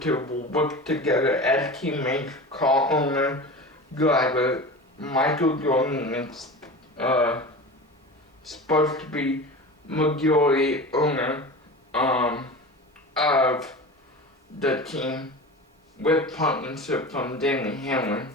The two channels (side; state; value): both; normal; correlation 0.32